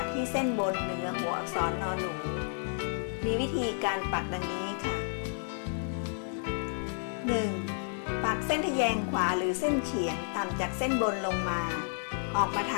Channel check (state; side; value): silent; right; digital silence